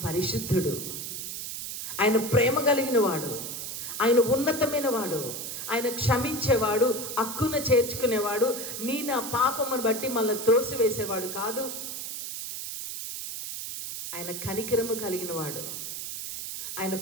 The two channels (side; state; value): right; noise; hiss, 6 dB below the sound